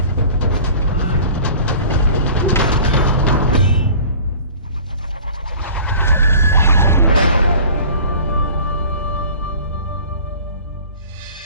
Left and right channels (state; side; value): inverted; both; correlation -0.45